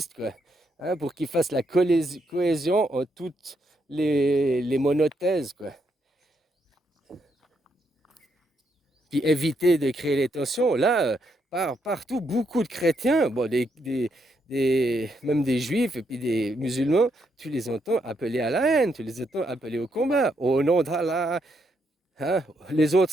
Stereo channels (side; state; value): both; normal; correlation 0.77